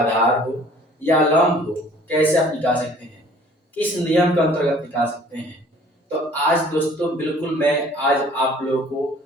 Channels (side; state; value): both; normal; correlation 0.52